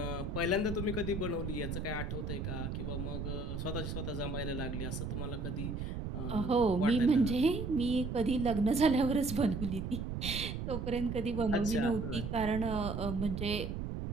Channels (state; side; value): noise; right; rumble, 4 dB below the sound